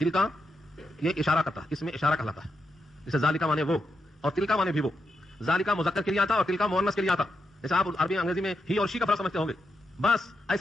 یہ اشارہ کرتا ہے, اس میں اشارہ کہلاتا ہے. جیسے ذالکا مانے وہ اور تلکا مانے بھی وہ. ذالکا مذکر کے لیے آتا اور تلکا مؤنث کے لیے آتا. جیسے آپ عربی انگریزی میں ہی اور شی کا فرق سمجھتے ہوں گے, بس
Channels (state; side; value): normal; both; correlation 0.85